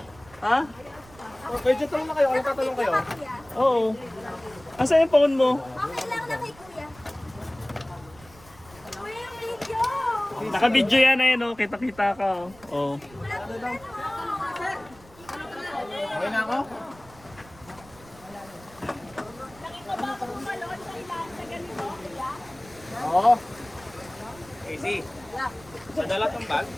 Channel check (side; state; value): right; noise; rumble, 23 dB below the sound